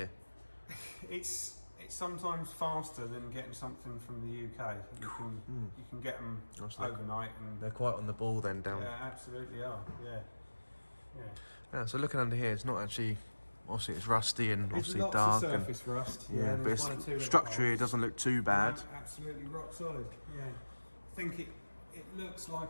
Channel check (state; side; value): inverted; both; correlation -1.00